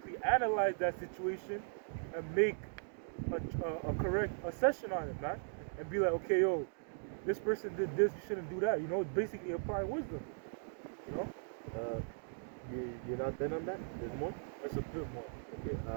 analyze that situation and make a correct assessment on it, man. And be like, okay, yo, this person did this, you shouldn't do that. It's basically applying wisdom, You're not done on that? There's more? That's a bit more. Okay.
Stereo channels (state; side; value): silent; left; digital silence